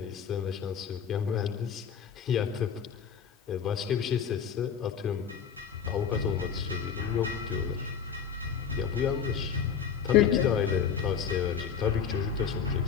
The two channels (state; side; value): quieter; right; 7.4 dB